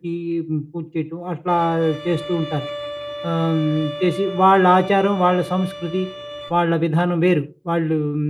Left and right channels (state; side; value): identical; both; correlation 1.00